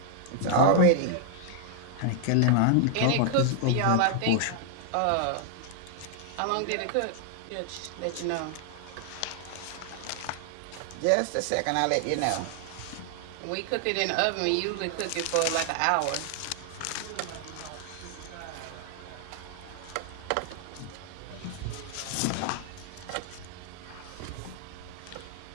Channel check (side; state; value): both; different; correlation 0.00